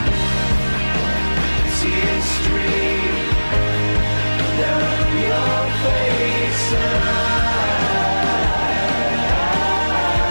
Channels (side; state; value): both; inverted; correlation -1.00